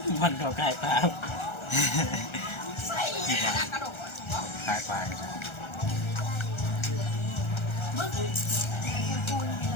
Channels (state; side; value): late; right; 1.3 ms